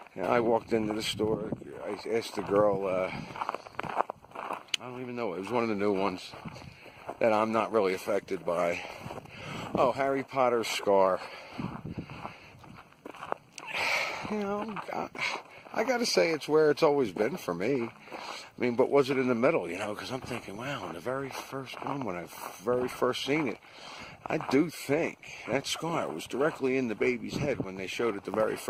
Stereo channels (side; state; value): both; identical; correlation 1.00